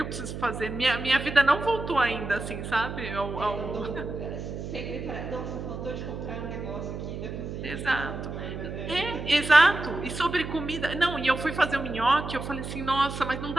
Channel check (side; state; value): right; noise; hum, 7 dB below the sound